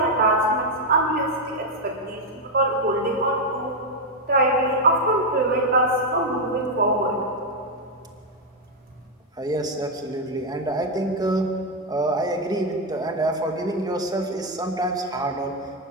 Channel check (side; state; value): both; normal; correlation 0.03